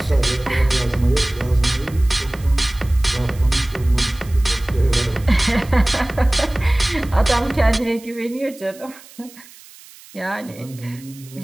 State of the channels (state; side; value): noise; right; hiss, 22 dB below the sound